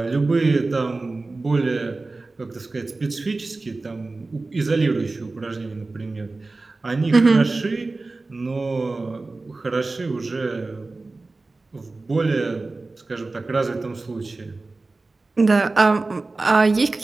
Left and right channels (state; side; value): quieter; left; 3.4 dB